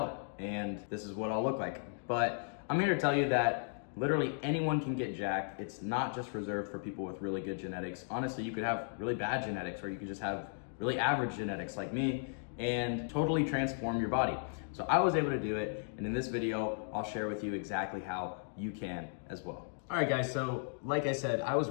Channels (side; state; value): right; silent; digital silence